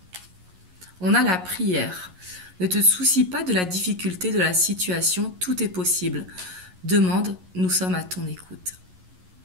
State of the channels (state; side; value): late; left; 11 ms